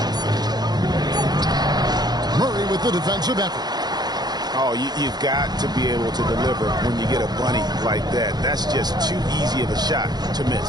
Murray with the defensive effort. Oh, you've got to be able to deliver when you get a bunny like that. That's just too easy of a shot to miss.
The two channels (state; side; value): late; left; 0.20 ms